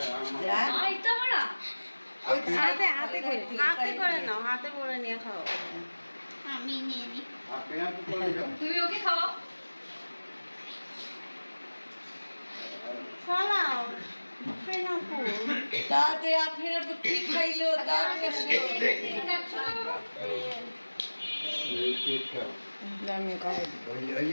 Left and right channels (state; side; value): inverted; both; correlation -1.00